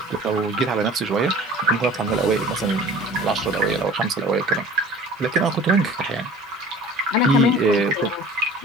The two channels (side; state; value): both; normal; correlation 0.44